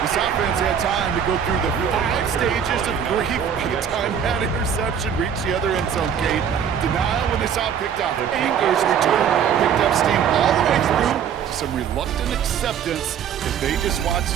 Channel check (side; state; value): left; quieter; 8.1 dB